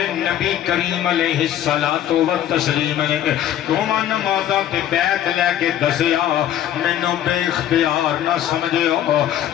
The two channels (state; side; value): quieter; right; 11.4 dB